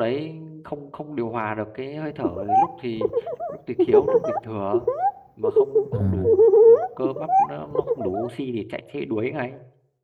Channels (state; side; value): identical; both; correlation 1.00